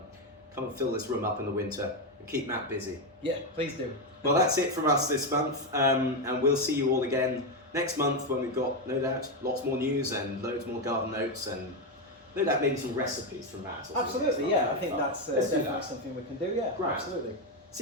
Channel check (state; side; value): normal; both; correlation 0.08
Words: come and fill this room up in the winter and keep Matt busy. Yeah, please do. Well, that's it from us this month, and we'll see you all again next month when we've got, no doubt, lots more news and loads more garden notes and no doubt maybe some recipes from Matt. or something. Absolutely, yeah. I think Fun. that's Let's do definitely that. something we can do. Yeah, Right. absolutely.